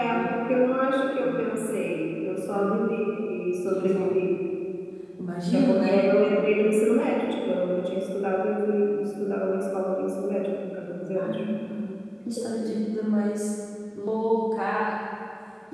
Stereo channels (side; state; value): both; identical; correlation 1.00